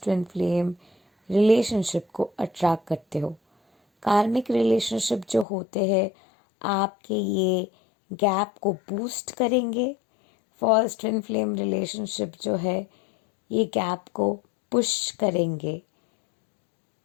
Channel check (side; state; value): right; drops out; at 5.5 s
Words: ट्विन फ्लेम रिलेशनशिप को अट्रैक्ट करते हो। कार्मिक रिलेशनशिप जो होते हैं आपके ये गैप को बूस्ट करेंगे। फॉल्स ट्विन फ्लेम रिलेशनशिप जो है ये गैप को पुश करेंगे